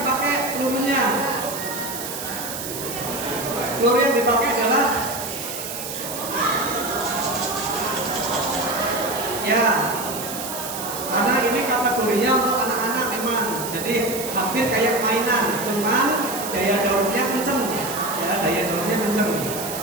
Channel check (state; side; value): noise; right; hiss, 7 dB below the sound